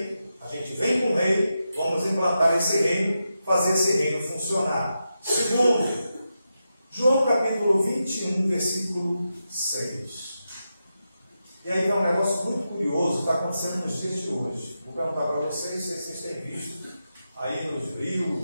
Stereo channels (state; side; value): inverted; both; correlation -0.88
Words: a gente vem com o rei, vamos implantar esse reino, fazer esse reino funcionar. Segundo, João capítulo 21, versículo 6. E aí é um negócio muito curioso, está acontecendo nos dias de hoje. Vou perguntar para vocês se vocês têm visto aí nos